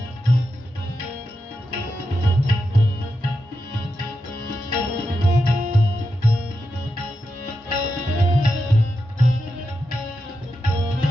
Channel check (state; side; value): normal; both; correlation 0.88